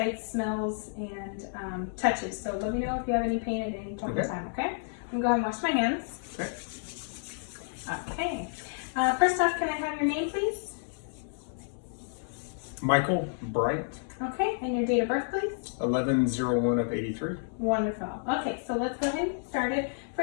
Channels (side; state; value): right; silent; 57 dB below the other